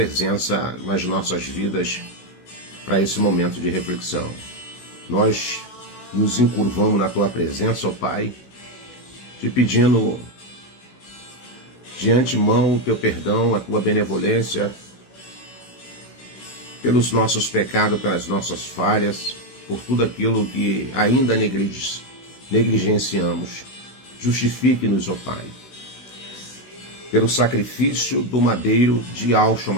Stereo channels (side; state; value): right; late; 16 ms